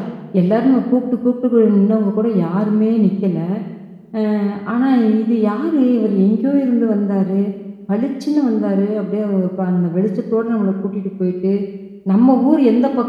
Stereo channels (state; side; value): identical; both; correlation 1.00